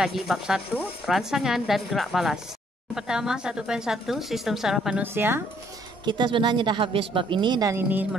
bab 1, rangsangan dan gerak balas. Pertama, 1.1, sistem saraf manusia. Kita sebenarnya dah habis bab ini dan ini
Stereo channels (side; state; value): both; normal; correlation 0.66